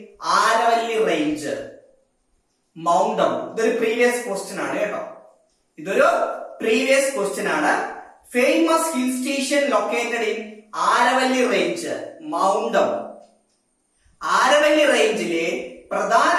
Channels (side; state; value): both; identical; correlation 1.00